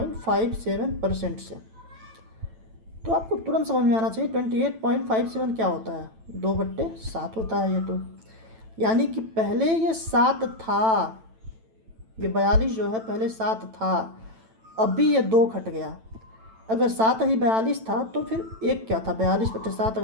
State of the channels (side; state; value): left; late; 9.0 ms